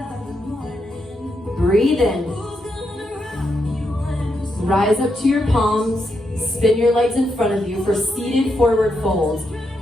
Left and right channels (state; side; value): normal; both; correlation 0.82